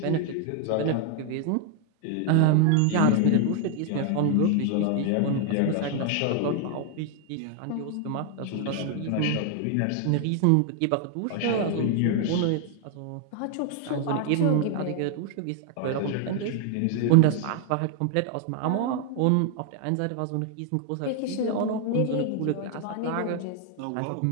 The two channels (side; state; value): both; different; correlation 0.00